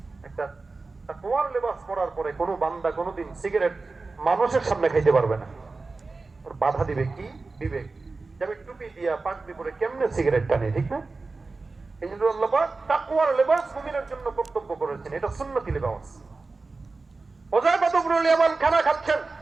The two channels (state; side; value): quieter; left; 3.8 dB